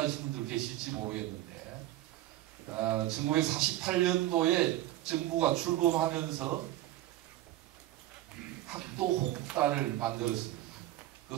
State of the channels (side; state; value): left; quieter; 14.9 dB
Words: 분들 계실지 모르겠는데 1948년도에 정부가 출범하면서 학도 호국단을 만들었습니다. 그